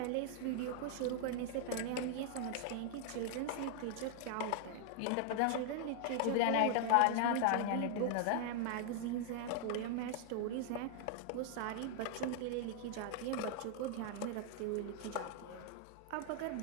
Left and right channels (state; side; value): different; both; correlation 0.00